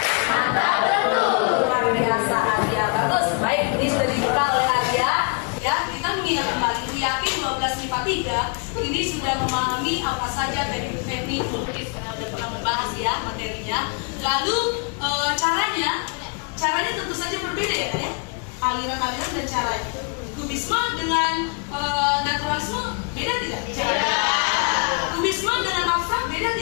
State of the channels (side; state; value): right; quieter; 35.8 dB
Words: mantap betul. Luar biasa Arya, bagus. Baik, ini sudah dibuka oleh Arya. Ya, kita mengingat kembali, yakin 12 lipat 3 ini sudah memahami apa saja teknik melukis karena sudah pernah membahas ya materinya. Lalu caranya tentu saja berbeda ya, aliran-aliran dan caranya. Kubisme dengan naturalisme beda tidak? Beda. Kubisme dengan abstrak beda